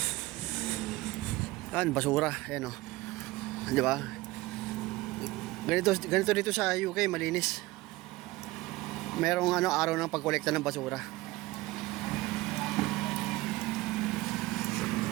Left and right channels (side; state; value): left; quieter; 19.6 dB